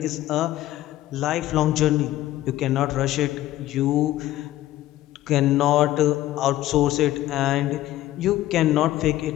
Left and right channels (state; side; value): quieter; right; 14.7 dB